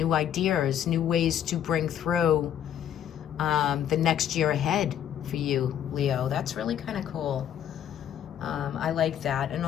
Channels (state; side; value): quieter; right; 9.9 dB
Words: ideas, new ways to bring through the next year ahead for you, Leo. That's really kind of cool. I like that. And